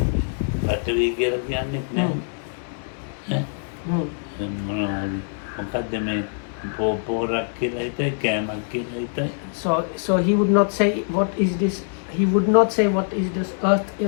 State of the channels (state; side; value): silent; right; digital silence